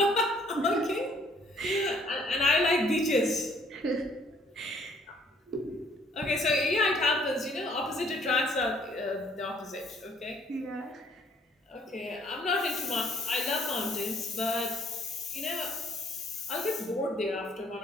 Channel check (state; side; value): normal; both; correlation 0.62